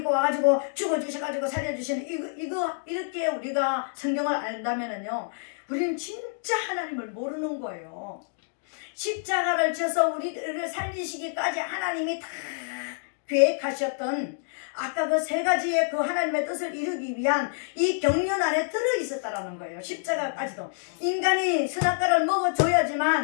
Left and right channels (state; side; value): silent; right; digital silence